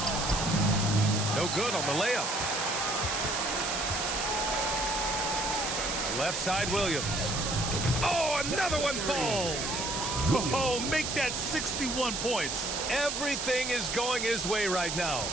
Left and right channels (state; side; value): noise; right; hiss, 2 dB below the sound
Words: No good on the layup. Left side Williams. Oh, another one falls. Oh, make that 61 points. Everything is going his way right now.